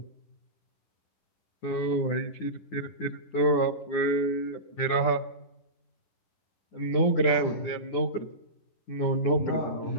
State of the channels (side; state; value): right; late; 9.8 ms